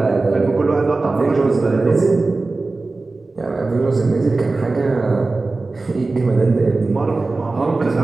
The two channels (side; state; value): left; quieter; 3.5 dB